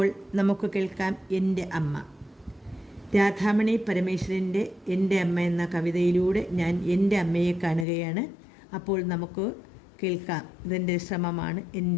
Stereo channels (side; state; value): right; drops out; at 7.9 s